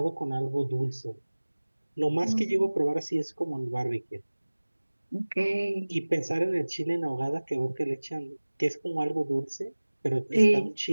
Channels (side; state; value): both; inverted; correlation -1.00